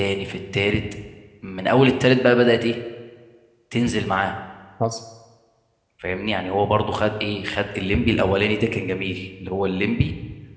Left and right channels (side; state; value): both; identical; correlation 1.00